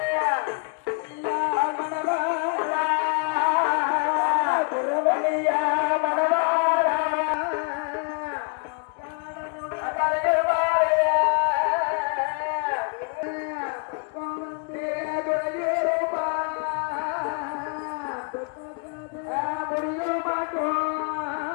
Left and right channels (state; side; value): quieter; right; 38.0 dB